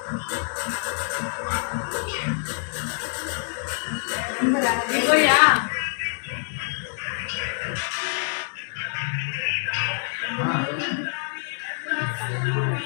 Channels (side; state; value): right; silent; 61 dB below the other